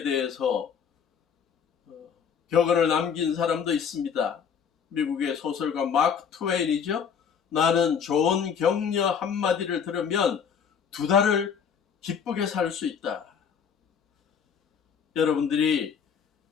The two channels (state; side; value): quieter; right; 7.1 dB